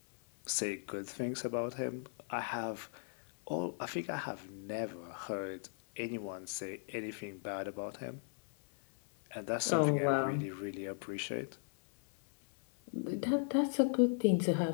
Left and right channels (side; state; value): right; silent; 53 dB below the other